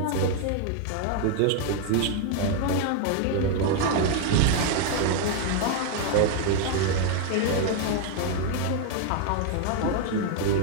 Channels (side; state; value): both; different; correlation 0.00